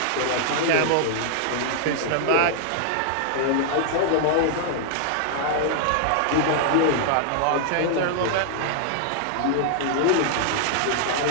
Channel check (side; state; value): both; different; correlation -0.01